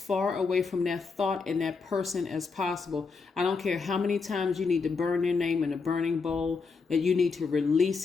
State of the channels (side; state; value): right; quieter; 4.8 dB